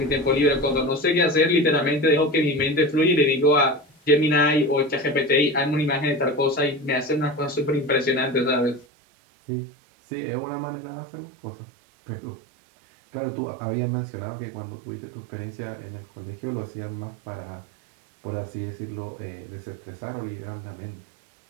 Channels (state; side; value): drops out; left; at 8.8 s